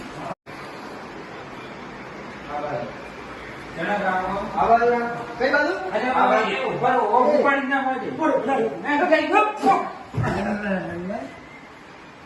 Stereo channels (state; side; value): identical; both; correlation 1.00